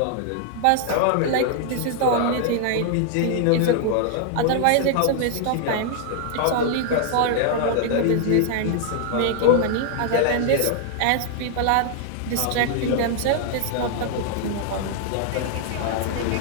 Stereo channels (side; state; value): both; different; correlation 0.00